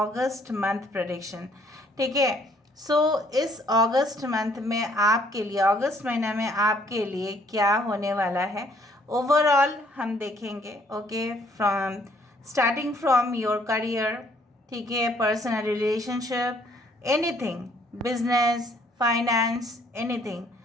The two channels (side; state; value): both; normal; correlation 0.64